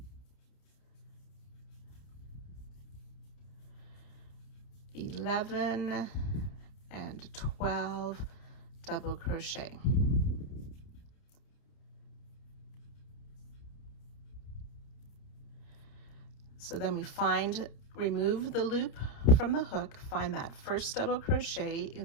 (11) and 12 double crochet. So then we remove the loop from the hook, find that first double crochet,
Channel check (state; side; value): late; right; 30 ms